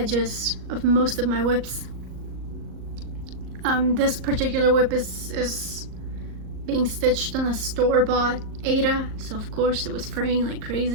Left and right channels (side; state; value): left; late; 38 ms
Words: of most of my whips. This particular whip is being stitched on a store-bought Ada, so of course it was fraying like